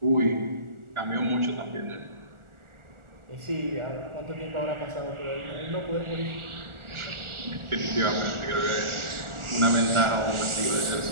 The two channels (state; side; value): late; left; 1.4 ms